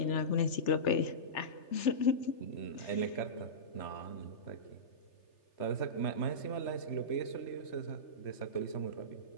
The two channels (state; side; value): late; right; 3.3 ms